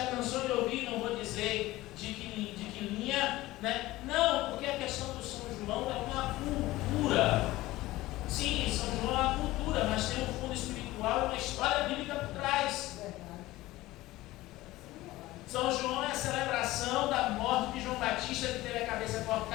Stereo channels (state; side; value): quieter; right; 17.7 dB